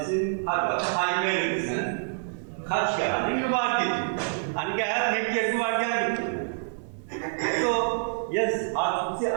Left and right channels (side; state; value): left; silent; 60 dB below the other